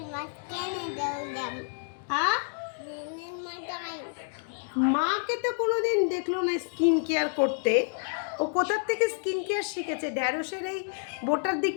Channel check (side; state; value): right; silent; digital silence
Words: in my skin and them. হ্যাঁ, In my time. মাকে তো কোনোদিন দেখলো না স্কিন কেয়ার করতে। ও কোথার থেকে স্কিন কেয়ার শিখেছে? ঢ্যাঁড়সের এই বোটার